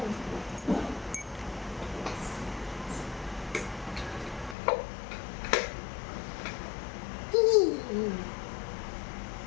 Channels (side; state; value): right; drops out; at 4.5 s